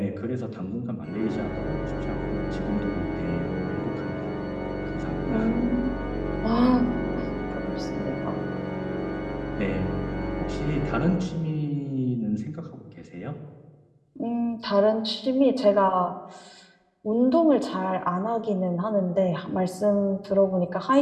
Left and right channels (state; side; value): identical; both; correlation 1.00